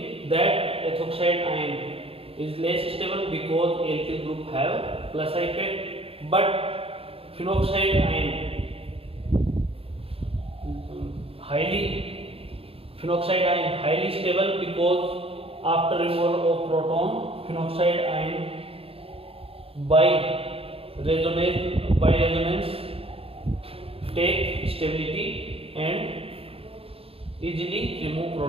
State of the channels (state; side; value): late; left; 0.28 ms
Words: that ethoxide ion is less stable because alkyl group have plus effect, but phenoxide ion highly stable because after removal of proton phenoxide ion by resonance take stability and easily remove